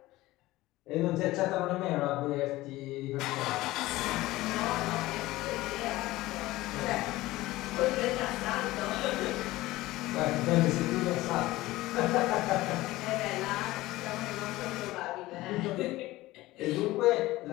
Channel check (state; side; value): quieter; right; 18.0 dB